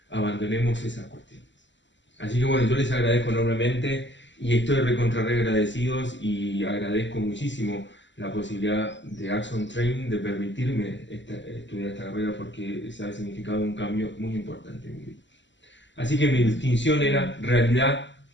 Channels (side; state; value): right; late; 0.53 ms